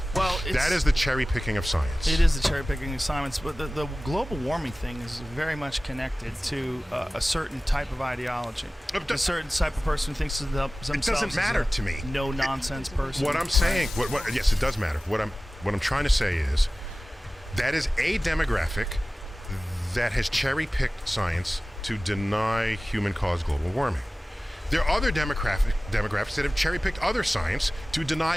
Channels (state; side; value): normal; both; correlation 0.97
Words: Well, that is the cherry picking of science. It is the cherry picking of science, but the global warming thing is very much connected to a certain type of ideology. A certain type of person who thinks of themselves. It doesn't matter to me. No nonsense person. What I'm saying, yes, it does matter. What I'm trying to say is that is a demographic that has cherry picked science to deny human-caused global warming. There are other demographics that have cherry-picked other science to deny